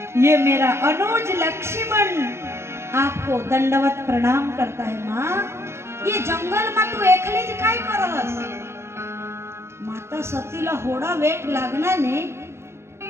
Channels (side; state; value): left; late; 0.13 ms